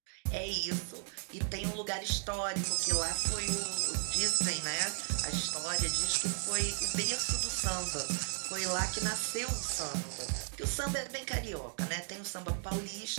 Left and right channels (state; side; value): silent; left; 54 dB below the other